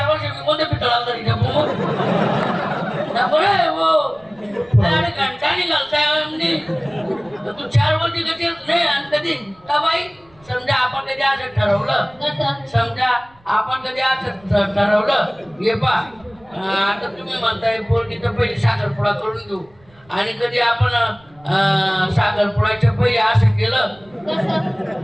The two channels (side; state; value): right; noise; rumble, 29 dB below the sound